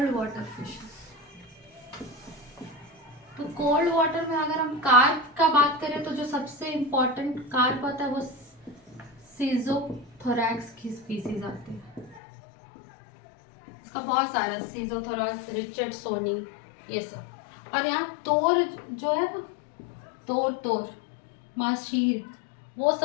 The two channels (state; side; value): drops out; right; at 12.2 s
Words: water fishes. तो कोल्ड वाटर में अगर हम कार्प का बात करें तो जो सबसे इम्पोर्टेंट कार्प आता है वो सीजोथोरैक्स की स्पीसीज आती है। इसका बहुत सारा, सीजोथोरैक्स, रिचर्डसोनी, ये सब। और यहाँ तोर जो है ना, तोर माशीर, वो